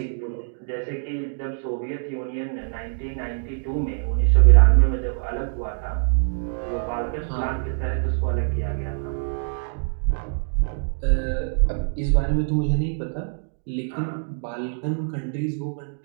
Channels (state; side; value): silent; left; digital silence